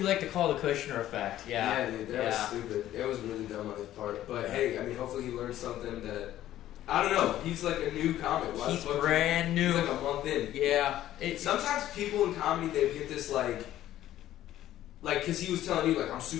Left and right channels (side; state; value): right; quieter; 13.1 dB